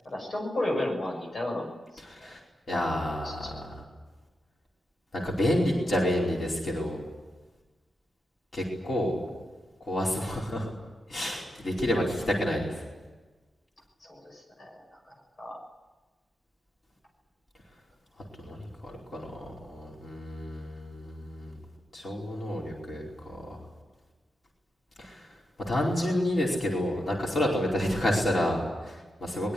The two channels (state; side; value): normal; both; correlation 0.86